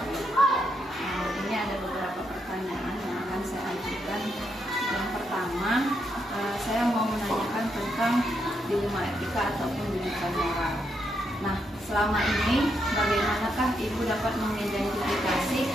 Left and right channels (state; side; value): normal; both; correlation 0.80